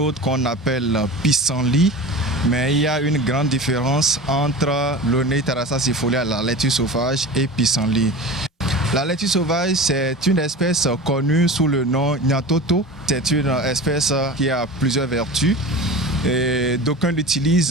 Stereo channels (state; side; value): normal; both; correlation 0.33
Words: qu'on appelle pissenlit. Mais il y a une grande différence entre Loné-Tarassa-Sifolia, la laitue sauvage, et pissenlit. La laitue sauvage, c'est une espèce connue sous le nom Nyatoto. C'est une espèce qui a plusieurs vertus. Et d'aucuns